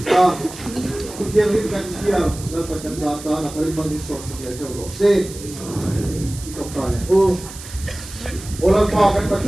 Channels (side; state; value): right; noise; hiss, 14 dB below the sound